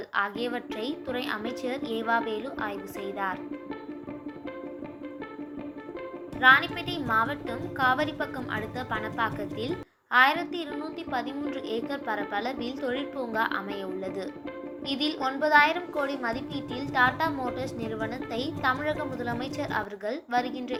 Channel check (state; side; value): identical; both; correlation 1.00